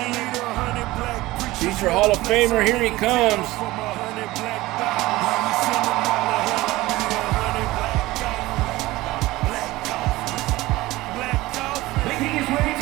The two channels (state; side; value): quieter; left; 18.7 dB